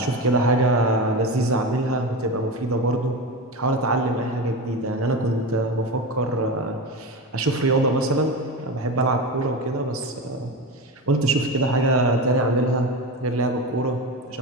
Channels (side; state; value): both; normal; correlation 0.22